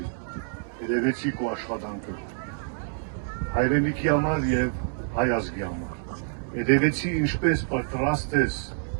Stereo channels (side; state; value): left; silent; 60 dB below the other